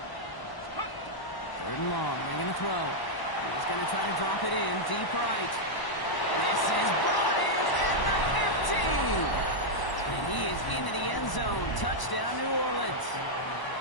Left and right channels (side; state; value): right; late; 1.0 ms